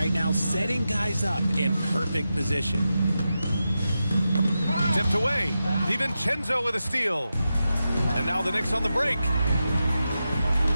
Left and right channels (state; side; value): inverted; both; correlation -0.90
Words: now, setting guys up in perfect position. Tipped away. DiVincenzo with a steal. And now the Knicks on the break.